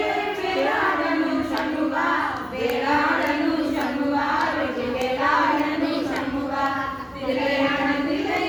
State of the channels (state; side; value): identical; both; correlation 1.00